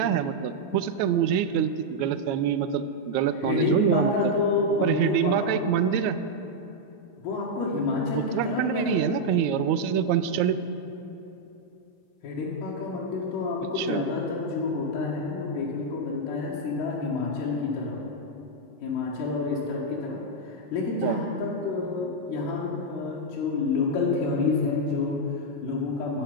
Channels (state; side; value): late; right; 15 ms